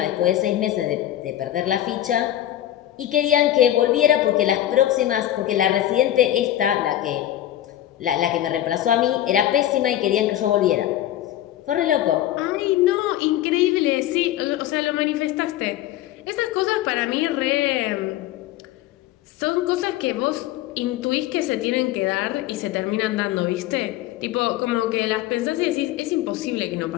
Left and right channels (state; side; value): quieter; right; 13.0 dB